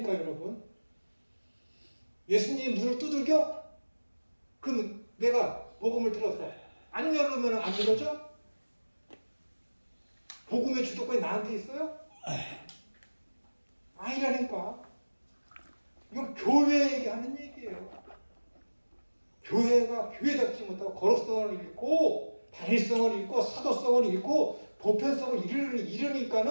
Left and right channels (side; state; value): both; inverted; correlation -1.00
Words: 여러분. 예수님이 문을 두들겨? 그럼 내가 복음을 들어서 안 열으면 안 열어져? 복음의 주도권이 나한테 있어요? 아니라니까. 이건 교회에게 하는 얘기예요. 교회가 교회답지 못하고 거룩성을 잃고 단일성을 잃고 사도성을 잃고 보편성을